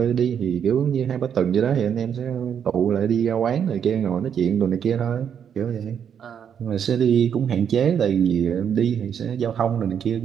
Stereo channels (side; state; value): left; quieter; 8.2 dB